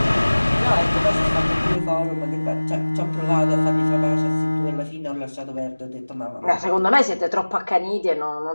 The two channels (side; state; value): both; inverted; correlation -1.00